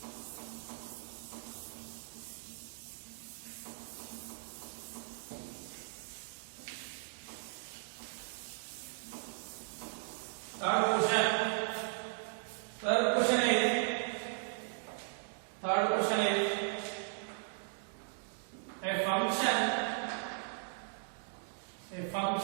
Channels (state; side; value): silent; left; digital silence